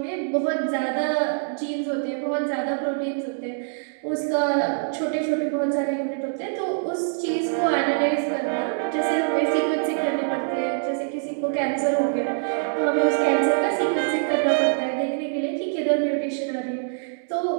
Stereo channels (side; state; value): left; silent; digital silence